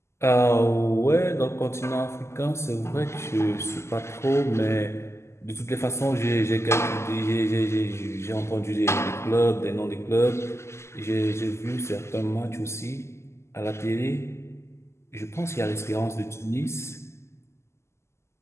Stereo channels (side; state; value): right; late; 0.13 ms